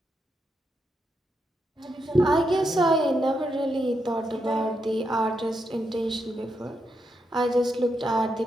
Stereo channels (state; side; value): normal; both; correlation 0.82